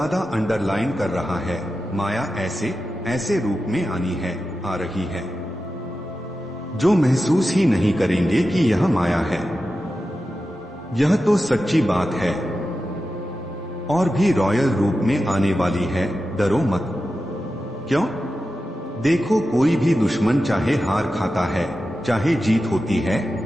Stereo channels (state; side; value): normal; both; correlation 0.92